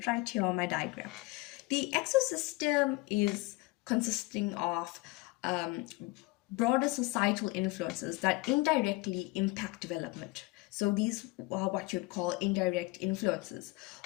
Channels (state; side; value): quieter; right; 22.3 dB